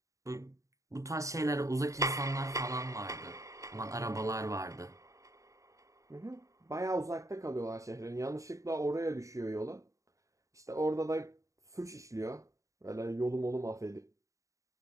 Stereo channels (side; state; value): left; late; 0.16 ms